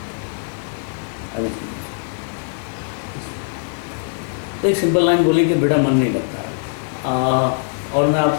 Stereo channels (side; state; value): right; silent; digital silence